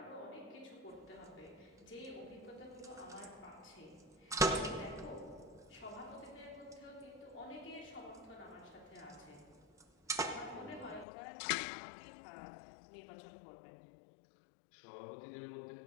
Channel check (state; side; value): drops out; right; at 11.1 s